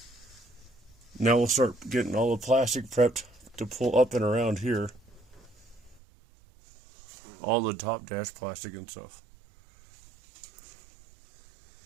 Now we'll start getting all the plastic prepped to pull up and around here. All the top dash plastic and stuff.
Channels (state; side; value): drops out; left; at 6.0 s